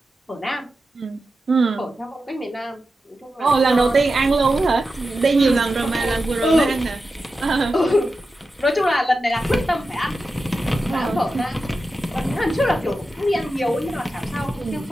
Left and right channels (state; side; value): normal; both; correlation 0.91